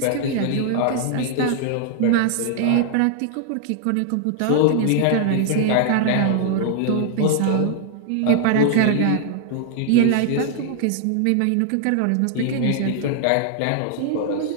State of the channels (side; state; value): both; different; correlation 0.00